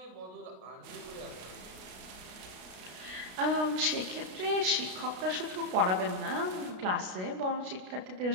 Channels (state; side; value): late; left; 32 ms